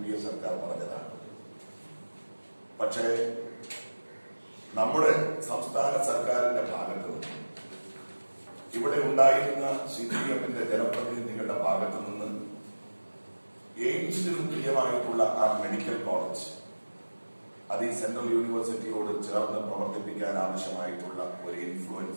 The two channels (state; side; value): inverted; both; correlation -1.00